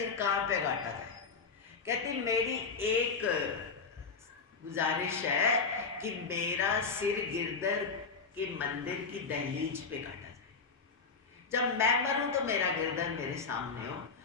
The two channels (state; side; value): quieter; right; 4.9 dB